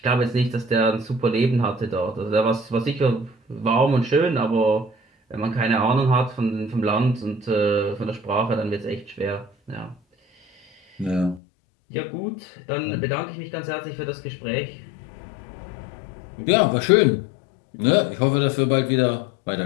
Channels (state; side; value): drops out; right; at 11.4 s